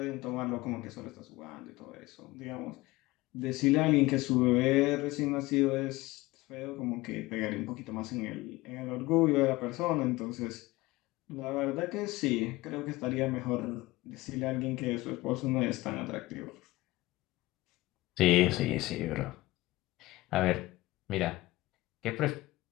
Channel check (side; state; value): right; quieter; 19.4 dB